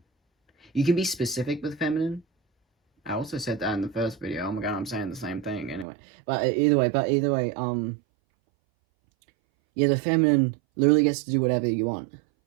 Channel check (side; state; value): left; drops out; at 5.9 s